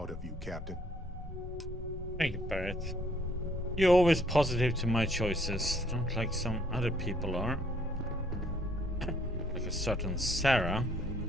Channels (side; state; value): both; normal; correlation 0.65